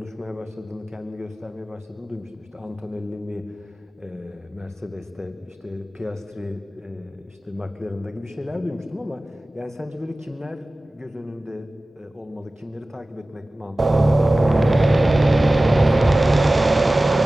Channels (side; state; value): both; normal; correlation 0.97